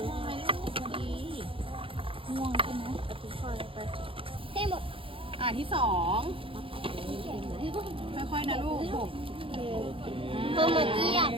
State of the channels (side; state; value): left; late; 0.26 ms